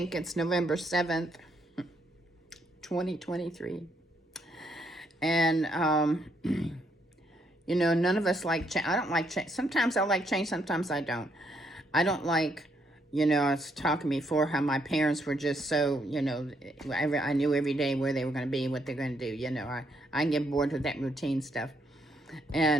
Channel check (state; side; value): normal; both; correlation 0.74